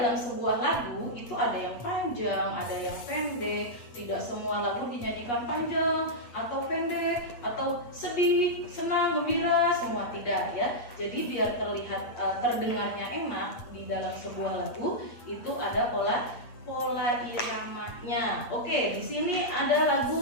sebuah lagu itu ada yang panjang, ada yang pendek. Tidak semua lagu dinyanyikan panjang atau pendek atau sedih, senang, gembira, semua tidak ya. Jadi biar terlihat terdengarnya enak di dalam sebuah lagu itu ada pola iramanya. Oke, di sini ada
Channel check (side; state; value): right; late; 8.3 ms